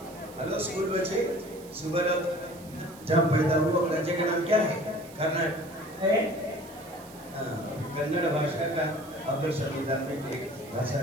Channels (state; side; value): noise; right; hiss, 20 dB below the sound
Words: हेलो स्कूल बच्चे, सुबह जब पैदा हुआ राज्य का नाम क्या है? कर्नाटक है। हाँ, कन्नड़ भाषा का अपने संविधान में एक भाषा